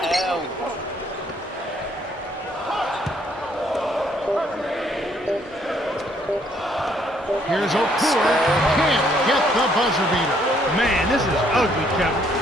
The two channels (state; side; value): normal; both; correlation 0.67